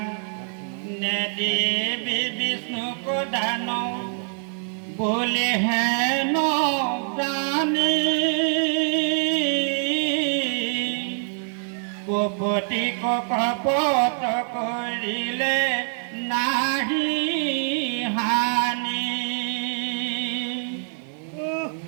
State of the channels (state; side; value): silent; left; 62 dB below the other